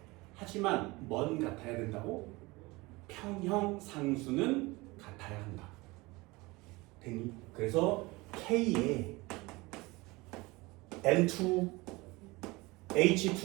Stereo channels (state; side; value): quieter; left; 22.8 dB